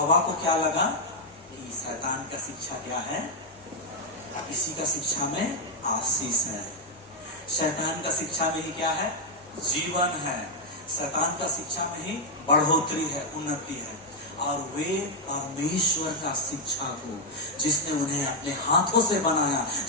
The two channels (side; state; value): both; normal; correlation -0.01